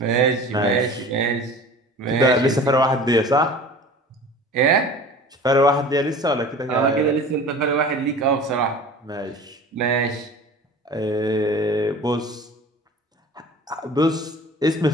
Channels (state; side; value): normal; both; correlation 0.41